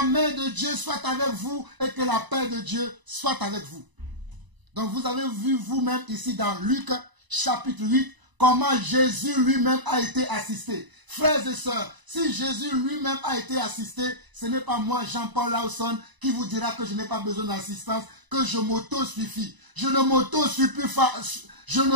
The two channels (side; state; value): left; late; 1.0 ms